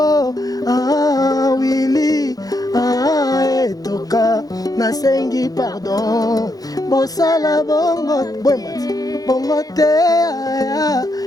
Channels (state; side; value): late; right; 0.18 ms